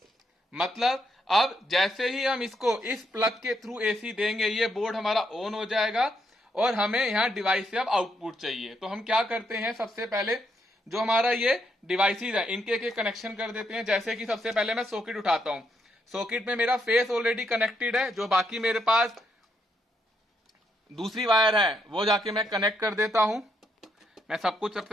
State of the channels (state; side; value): normal; both; correlation 0.77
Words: मतलब अब जैसे ही हम इसको इस प्लग के थ्रू एसी देंगे, ये बोर्ड हमारा ऑन हो जाएगा, और हमें यहाँ डिवाइस से अब आउटपुट चाहिए। तो हम क्या करते हैं, सबसे पहले जो हमारा ये डिवाइसेस है इनके एक कनेक्शन कर देते हैं। जैसे कि सबसे पहले मैं सॉकेट उठाता हूं, सॉकेट में मेरा फेस ऑलरेडी कनेक्टेड है, जो बाकी मेरे पास दूसरी वायर है वो जाके मैं कनेक्ट कर देता हूं। मैं सब कुछ